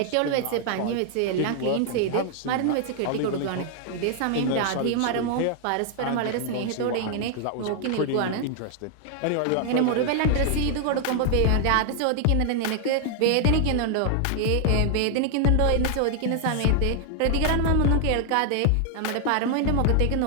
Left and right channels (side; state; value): both; different; correlation 0.00